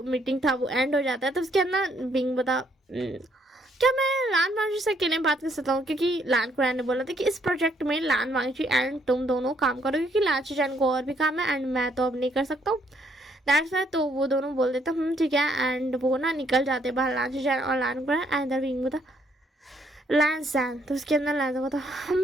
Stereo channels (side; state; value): both; normal; correlation 0.70